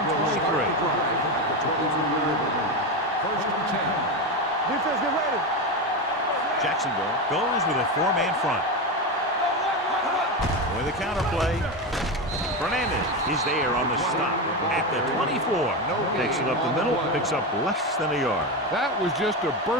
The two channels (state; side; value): normal; both; correlation 0.16